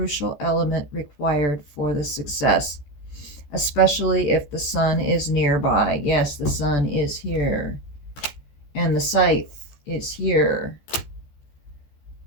element required for the success, especially if the sun is nearby. Yes, the sun is here, and the scythe is here.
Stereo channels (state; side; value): late; right; 14 ms